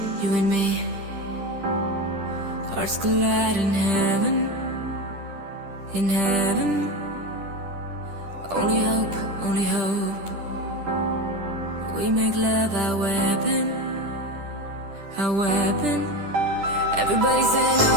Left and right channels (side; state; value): left; late; 10 ms